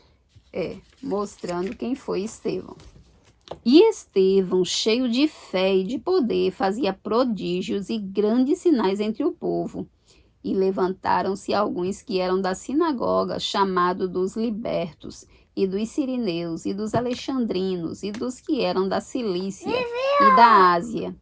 quem foi Estevão. E Estevão, cheio de fé e de poder, fazia prodígios e grandes sinais entre o povo. E levantaram-se alguns que eram da sinagoga, chamado dos libertos, e dos sirineus, e dos alexandrinos, e dos que eram da Cilícia e da Ásia,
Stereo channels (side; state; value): both; identical; correlation 1.00